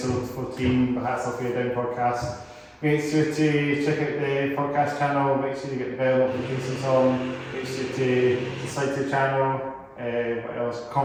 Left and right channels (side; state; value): both; identical; correlation 1.00